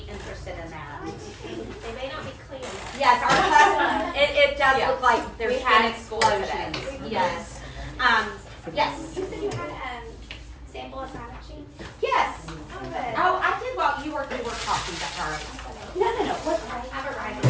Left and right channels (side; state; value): both; identical; correlation 1.00